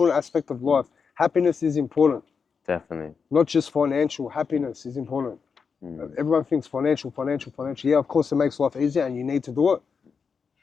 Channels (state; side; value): quieter; right; 5.8 dB